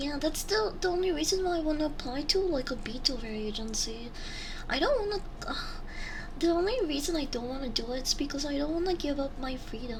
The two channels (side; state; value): both; identical; correlation 1.00